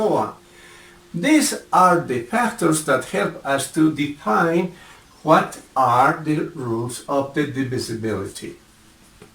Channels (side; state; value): both; identical; correlation 1.00